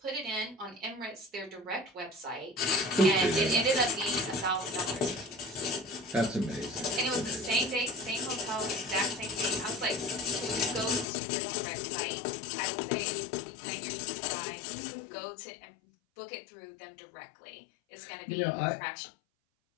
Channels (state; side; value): drops out; right; at 11.1 s